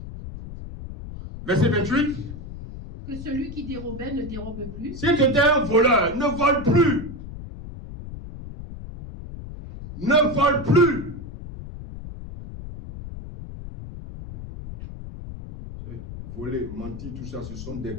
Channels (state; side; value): noise; left; rumble, 11 dB below the sound